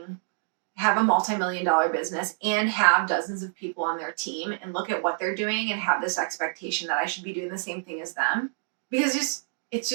multi-million-dollar business and have dozens of people on their team and look at what they're doing and have this expectation that I should be doing the same thing as them, because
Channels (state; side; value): silent; left; digital silence